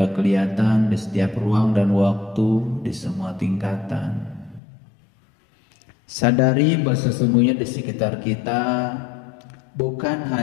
kelihatan, di setiap ruang dan waktu, di semua tingkatan. Sadari bahwa sesungguhnya di sekitar kita bukan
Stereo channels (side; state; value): right; drops out; at 4.6 s